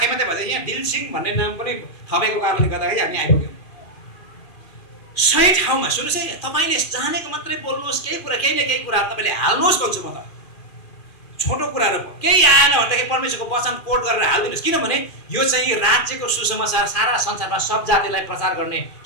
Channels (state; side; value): late; right; 2.4 ms